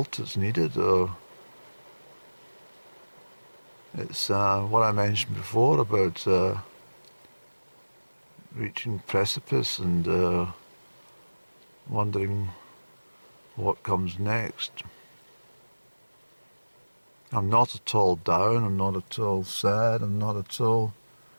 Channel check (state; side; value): inverted; both; correlation -1.00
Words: that's needed, or it's what I mentioned before about reaching precipice and wondering what comes next. I'm not at all down, I'm not at all sad, I'm not at all...